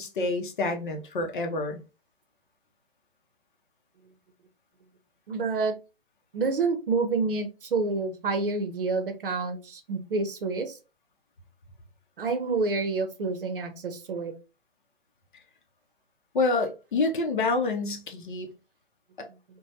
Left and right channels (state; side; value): normal; both; correlation 0.12